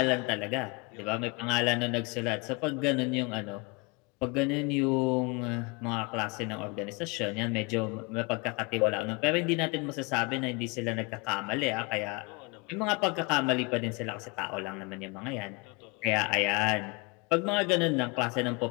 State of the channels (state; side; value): quieter; right; 28.5 dB